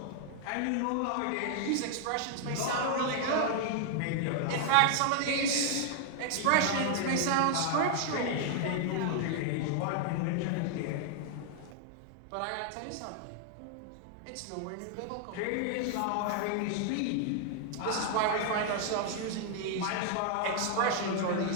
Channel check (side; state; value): both; different; correlation 0.00